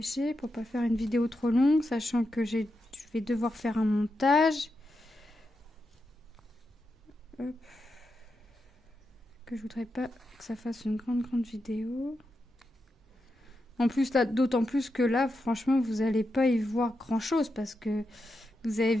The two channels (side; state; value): both; normal; correlation 0.87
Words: pour pas faire une vidéo trop longue, sachant que je vais devoir faire un montage. Hop. Que je voudrais pas que ça fasse une grande vidéo. En plus là, d'autant plus que là, franchement, vous allez pas y voir grand chose parce que vous avez